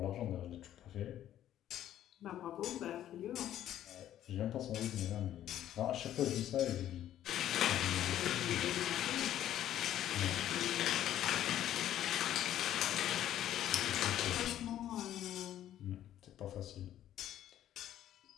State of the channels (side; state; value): right; quieter; 11.8 dB